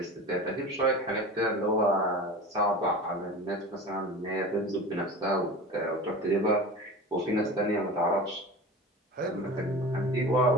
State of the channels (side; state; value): both; normal; correlation 0.34